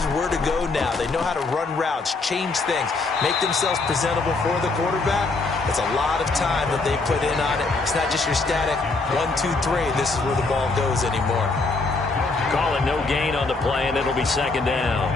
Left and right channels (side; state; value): right; quieter; 3.7 dB